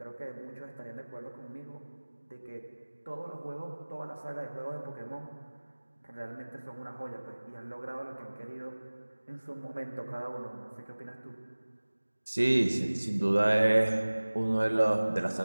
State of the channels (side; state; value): both; inverted; correlation -1.00